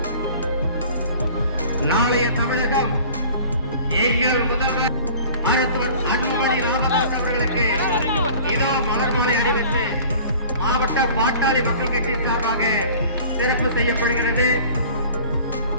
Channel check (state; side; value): inverted; both; correlation -0.45